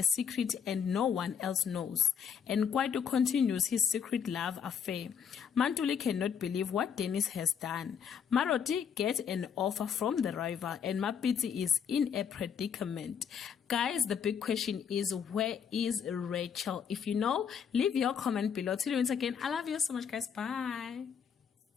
secret and no one else knows, and Kwaito continues his secret love affair. Mantuli cannot believe what Dennis has done. Maroti gets an offer from the rival, and Mapitsi is in a predicament. Guys, the big question is, where is Rachel? If you know, leave your comment below. Till we meet again, I love you so much guys. Bye.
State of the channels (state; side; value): quieter; right; 7.4 dB